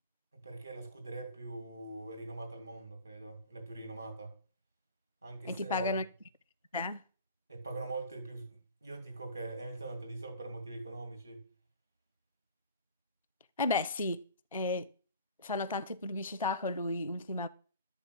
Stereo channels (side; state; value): both; inverted; correlation -0.41